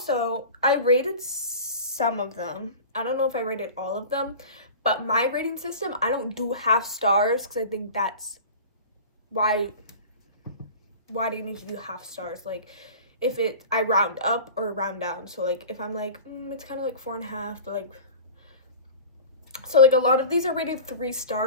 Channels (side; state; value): both; inverted; correlation -0.37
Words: I rated some of them. I don't know if I rated all of them, but my rating system, I don't do half stars because I think that's why do you need to do half stars? Like, if I round up or round down. So like, if I'm like, it's kind of like 4.5, but like, so like a lot of these are rated 3